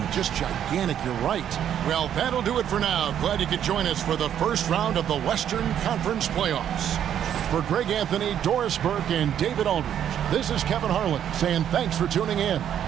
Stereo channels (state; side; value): quieter; left; 9.8 dB